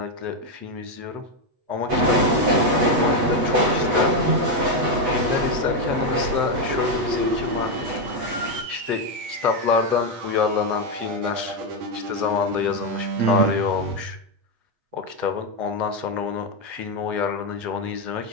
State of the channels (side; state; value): left; late; 8.1 ms